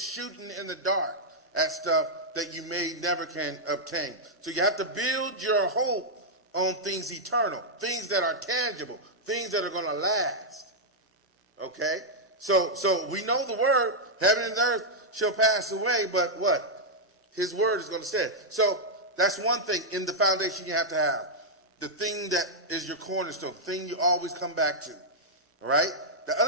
in the dark at stuff that you may never can obtain. So you have to build your hope on things eternal, things that are tangible, things that are going to last. Okay? So we know the word, heaven and earth shall pass away, but what? His word is going to stay. So that's one thing in the foundation you have to have. The thing that is your cornerstone, the thing you always come back to. All right? The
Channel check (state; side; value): normal; both; correlation -0.05